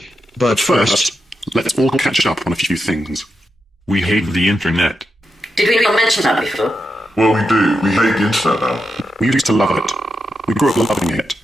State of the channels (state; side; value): normal; both; correlation 0.86